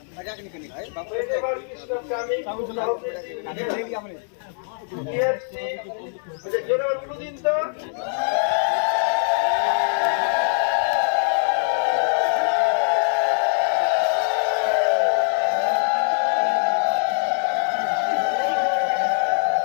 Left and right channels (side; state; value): right; silent; 60 dB below the other